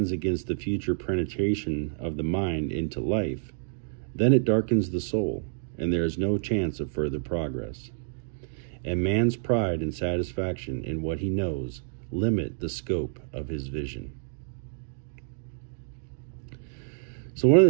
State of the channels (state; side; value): silent; left; digital silence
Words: against the future penetration of the mind into life, then it darkens the soul, and there is no chance of further progress. And man's pride and satisfaction in what he knows limit the scope of his vision." So one of